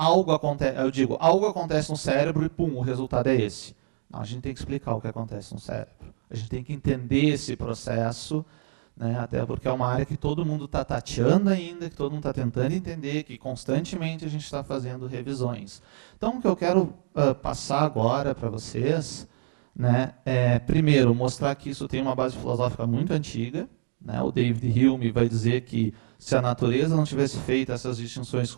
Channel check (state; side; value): silent; left; digital silence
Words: acontece no cérebro e pum, o resultado é esse. Não, a gente tem que explicar o que acontece no cérebro. A gente tem que entender esse processo, né, até porque é uma área que todo mundo está tateando ainda, que todo mundo está tentando entender, que constantemente a gente está fazendo revisões. Então, o que eu quero passar agora para vocês, né, é, primeiro, mostrar que isso tem uma base filosófica muito antiga. Né, o David Hume vai dizer que se a natureza não tivesse feito essas distinções